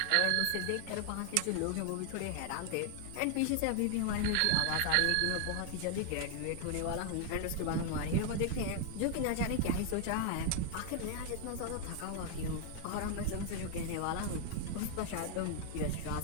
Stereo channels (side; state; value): both; different; correlation 0.00